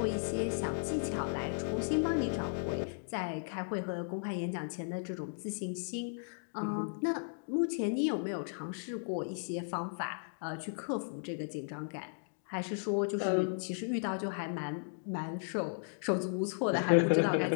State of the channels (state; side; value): silent; right; digital silence